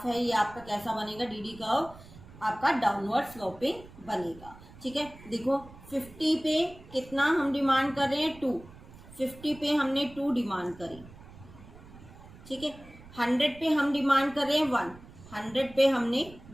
है ये आपका कैसा बनेगा, डीडी कर्व आपका डाउनवर्ड स्लोपिंग बनेगा, ठीक है। देखो 50 पे कितना हम डिमांड कर रहे हैं, 2। 50 पे हमने 2 डिमांड करी, ठीक है। 100 पे हम डिमांड कर रहे हैं 1, 100 पे हमने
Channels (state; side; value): noise; right; rumble, 20 dB below the sound